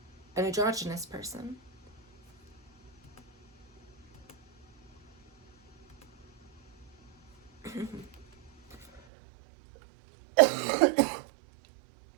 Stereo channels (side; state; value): left; drops out; at 9.0 s